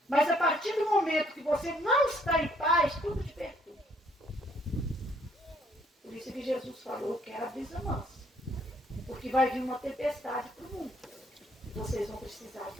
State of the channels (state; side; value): normal; both; correlation 0.66